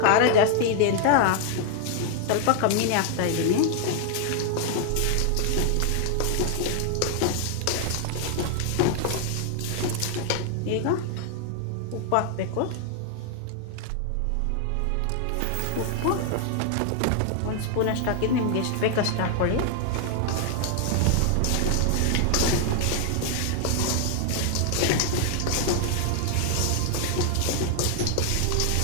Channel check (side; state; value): both; different; correlation 0.00